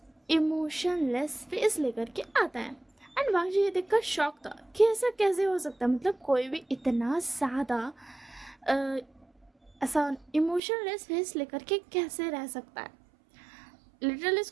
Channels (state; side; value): drops out; left; at 10.6 s